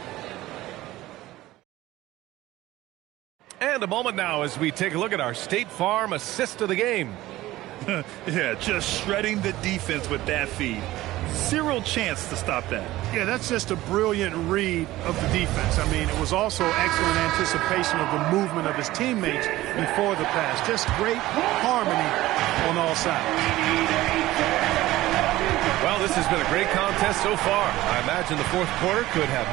And a moment now as we take a look at our State Farm assist of the game. Yeah, just shredding the defense with that feed. Zero chance to stop that. Yeah, that's just a brilliant read of the defense. I mean, it was also excellent anticipation of the movement of his teammates before the pass. Just great harmony on all sides. Well, this has been a great contest so far. I imagine the 4th quarter could have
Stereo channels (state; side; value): quieter; left; 16.7 dB